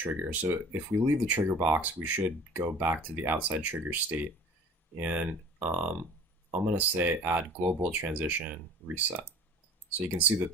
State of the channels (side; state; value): both; normal; correlation 0.45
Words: So if we leave the trigger box, we should go back to the outside trigger state. And I'm going to say add global transition reset. So you can see that